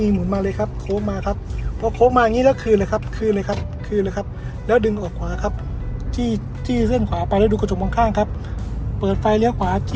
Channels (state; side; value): identical; both; correlation 1.00